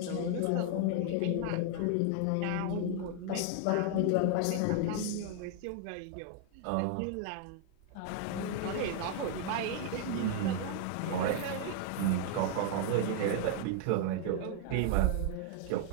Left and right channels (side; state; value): both; different; correlation 0.00